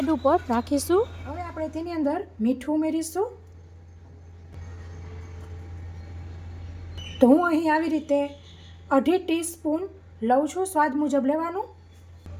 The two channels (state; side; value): identical; both; correlation 1.00